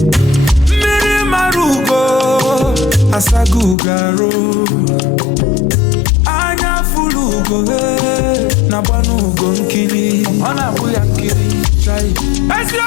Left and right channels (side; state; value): right; drops out; at 3.8 s